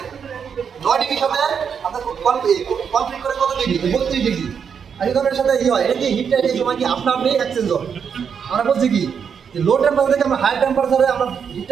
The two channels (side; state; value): left; quieter; 7.0 dB